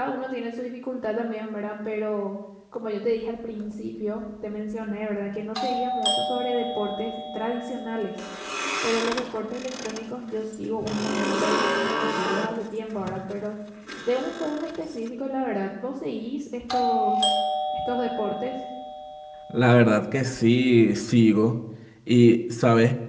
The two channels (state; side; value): identical; both; correlation 1.00